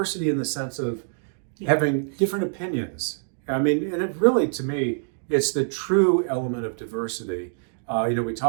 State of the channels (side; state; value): left; silent; digital silence